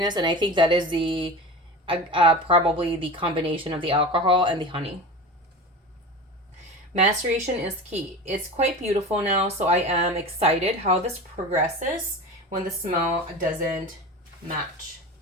and I think that is probably the combination of the alcohol and the honey. Maceration is key. It's quite beautiful now, so I am excited how this progresses when the smell doesn't match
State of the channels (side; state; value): both; normal; correlation 0.31